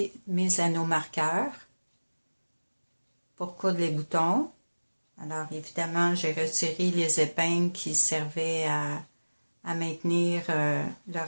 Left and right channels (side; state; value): both; inverted; correlation -1.00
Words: mes anneaux marqueurs pour coudre les boutons, alors évidemment, j'ai retiré les épingles qui servaient à maintenir le